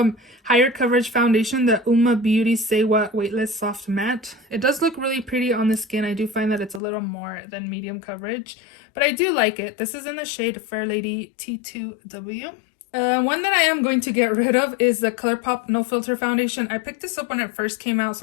higher coverage foundation, the Uma Beauty Say What Weightless Soft Matte. It does look really pretty on the skin. I do find that it's a little more than medium coverage, but I do like it. This is in the shade Fair Lady T2W. One that I am going to get rid of is the Colourpop No Filter Foundation. I picked this up when it first came out,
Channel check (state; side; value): drops out; right; at 6.8 s